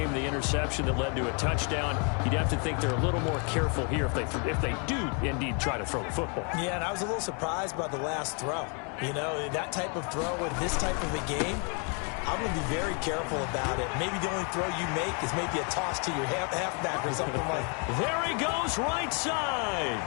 The interception that led to a touchdown. You'd have to think they're a little more careful here if they do indeed try to throw the football. Yeah, and I was a little surprised by the last throw. You know, that type of throw in this type of a game, I'm going to be very careful about it. Maybe the only throw you make is maybe a toss to your halfback or something like that. There he goes, right side.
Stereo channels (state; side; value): quieter; right; 37.1 dB